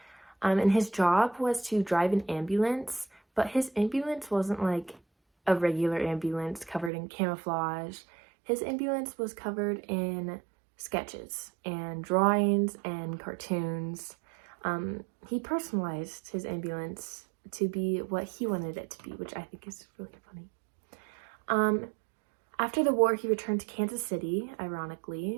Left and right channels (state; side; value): drops out; left; at 6.9 s